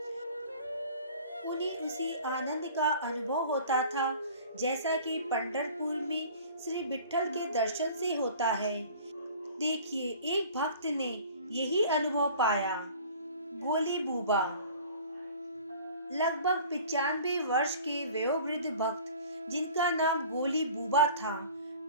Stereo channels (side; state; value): both; inverted; correlation -0.46